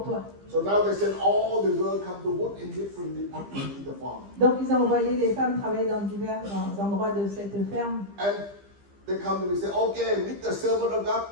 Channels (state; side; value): late; left; 15 ms